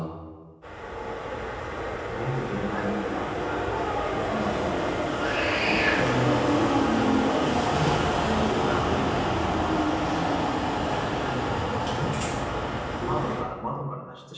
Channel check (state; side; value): identical; both; correlation 1.00